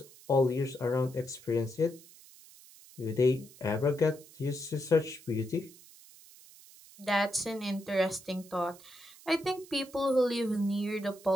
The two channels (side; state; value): right; noise; hiss, 22 dB below the sound